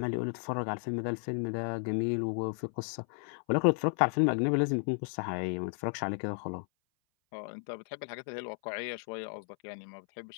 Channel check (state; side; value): silent; right; 55 dB below the other